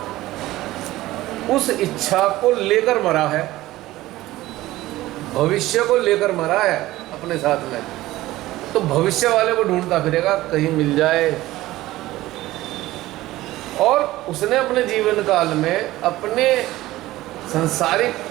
उस इच्छा को लेकर मरा है, भविष्य को लेकर मरा है अपने साथ में। तो भविष्य वाले को ढूंढता फिरेगा कहीं मिल जाए। और उसने अपने जीवन काल में अपने सांसारिक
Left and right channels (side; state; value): left; quieter; 16.8 dB